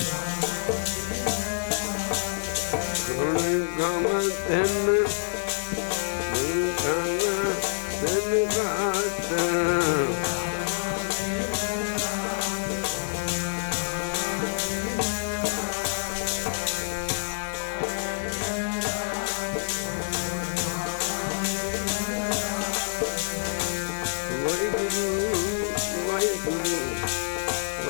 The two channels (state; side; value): silent; right; 60 dB below the other